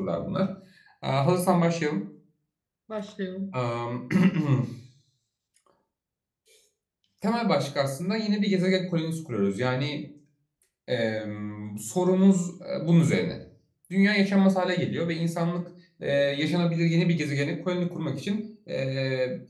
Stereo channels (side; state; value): both; identical; correlation 1.00